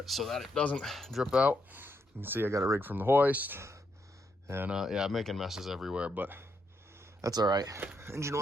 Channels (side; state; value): both; normal; correlation 0.79